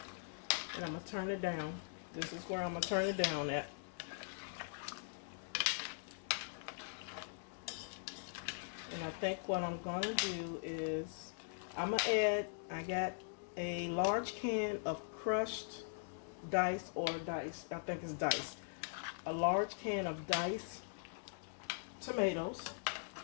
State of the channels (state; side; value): silent; right; digital silence